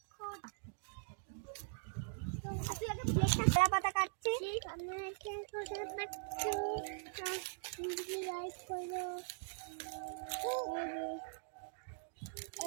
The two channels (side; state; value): left; silent; digital silence